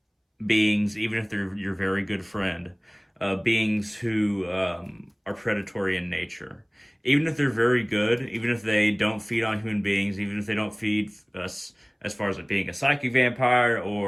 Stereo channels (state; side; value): identical; both; correlation 1.00